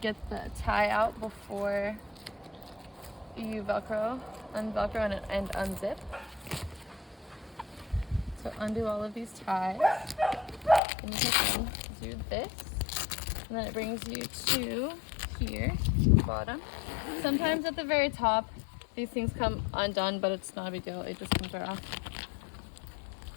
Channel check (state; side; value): drops out; right; at 10.8 s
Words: the tie out before you unvelcro and unzip. So undo all of these ties, and you can do this, and then it brings you to here, bottom. Sometimes at the very top, these things come undone, but it's not a big deal. It just comes right off.